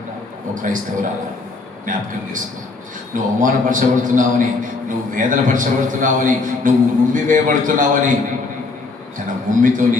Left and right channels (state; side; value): quieter; right; 3.8 dB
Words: ఒక క్రైస్తవురాలా జ్ఞాపకం చేసుకో. నువ్వు అవమానపరచబడుతున్నావని, నువ్వు వేదనపరచబడుతున్నావని, నువ్వు ఉమ్మి వేయబడుతున్నావని తన ఉమ్మితో నీ